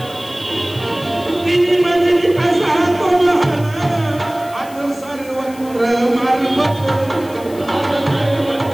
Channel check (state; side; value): noise; left; hiss, 21 dB below the sound